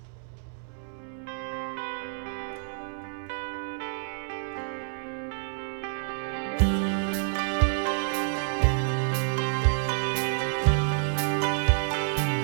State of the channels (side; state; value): left; silent; 59 dB below the other